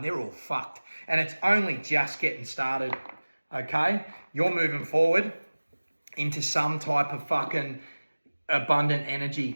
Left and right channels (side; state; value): both; inverted; correlation -1.00